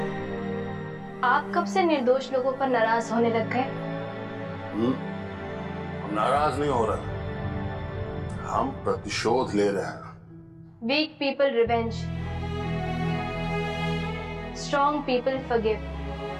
आप कब से निर्दोष लोगों पर नाराज होने लग गए? हम नाराज नहीं हो रहे, हम प्रतिशोध ले रहे हैं। Weak people revenge, strong people forgive.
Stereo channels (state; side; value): identical; both; correlation 1.00